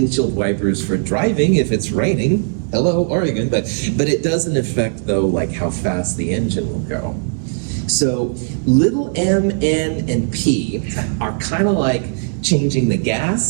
wipers for driving if it's raining. Hello, Oregon, but it doesn't affect, though, like how fast the engine will go. So little m, n, and p are kind of like changing the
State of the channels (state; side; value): silent; left; digital silence